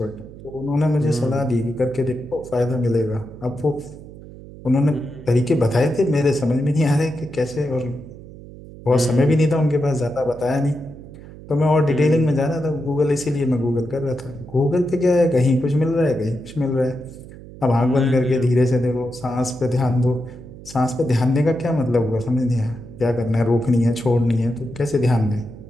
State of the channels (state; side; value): noise; right; hum, 17 dB below the sound